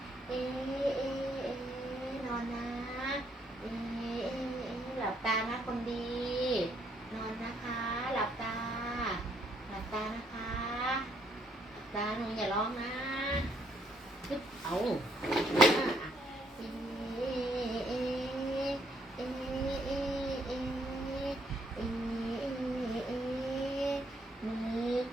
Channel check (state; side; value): normal; both; correlation 0.70